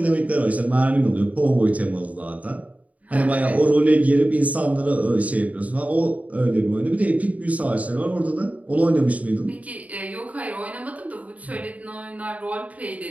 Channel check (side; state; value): left; late; 0.070 ms